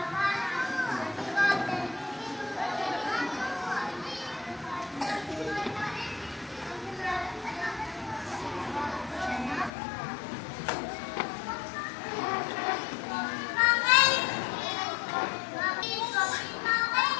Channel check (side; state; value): right; drops out; at 9.7 s